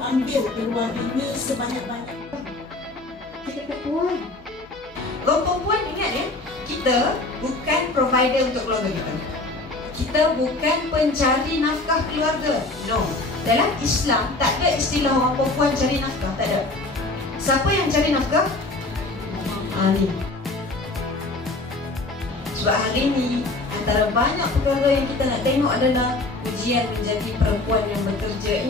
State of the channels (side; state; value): right; quieter; 3.0 dB